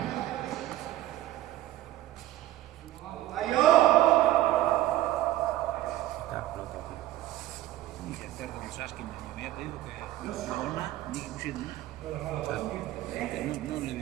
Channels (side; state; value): left; quieter; 15.1 dB